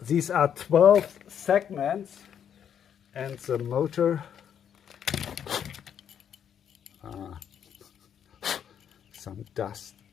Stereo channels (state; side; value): quieter; right; 8.7 dB